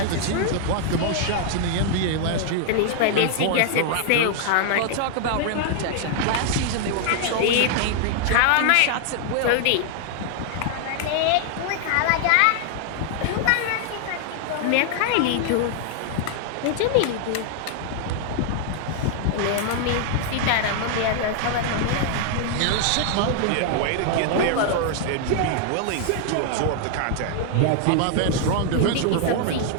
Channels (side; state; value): both; different; correlation 0.00